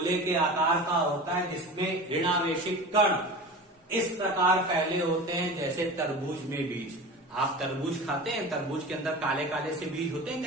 के आकार का होता है जिसमें ऋणावेशित कण इस प्रकार फैले होते हैं जैसे तरबूज में बीज। आप तरबूज खाते हैं, तरबूज के अंदर काले काले से बीज होते हैं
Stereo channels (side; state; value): both; normal; correlation 0.33